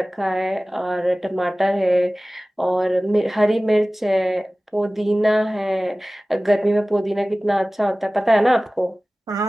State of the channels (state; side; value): normal; both; correlation 0.97